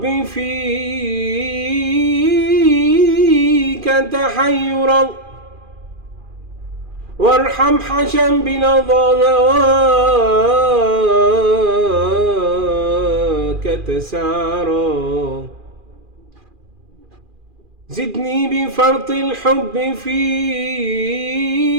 فيك تحيرا، وارحم حشا بلظى هواك تسعرا. زدني بفرط الحب فيك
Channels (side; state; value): left; late; 2.4 ms